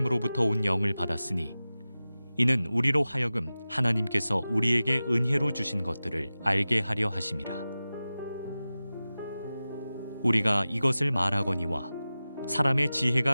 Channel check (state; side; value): inverted; both; correlation -0.95